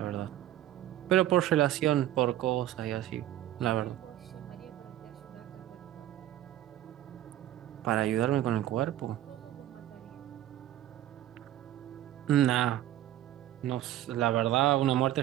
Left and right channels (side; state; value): left; quieter; 13.2 dB